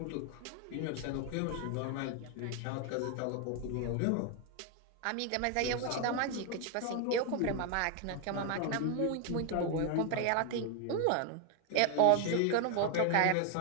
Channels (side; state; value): both; different; correlation 0.01